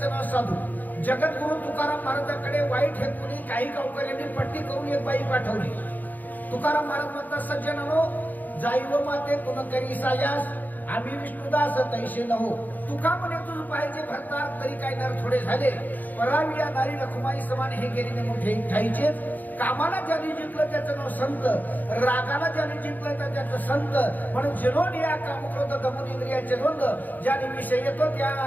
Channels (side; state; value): right; late; 0.085 ms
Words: नाव साधू। जगद्गुरु तुकाराम महाराजांकडे वाईट हेतूने काही गावकऱ्यांनी पट्टी करून एक बाई पाठवली। तुकाराम महाराज म्हणतात, सज्जनानो जाईव माते तुन करी सायास आम्ही विष्णुदास तैसे नहो। तुका म्हणे तुझ पाहिजे भरतार तरी काय नर थोडे झाले, परावी या नारी रखुमाई समान हे गेलीने मोठे ठाईचे। कामाला ज्याने जिंकलं त्याचं नाव संत, रागाला ज्याने जिंकलं त्याचं संत। म्हणून जिनोन या कामक्रोध दमून इंद्रियाचे द्वंद्व ज्याने विषय येतो